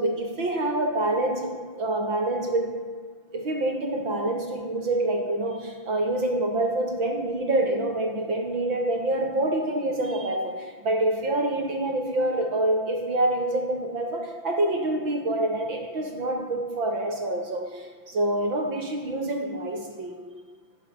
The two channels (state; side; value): late; left; 5.9 ms